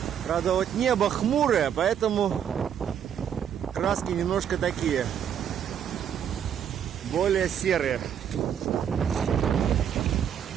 Правда, вот небо хмурое, поэтому краски немножко такие. Более серые.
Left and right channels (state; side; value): quieter; left; 8.9 dB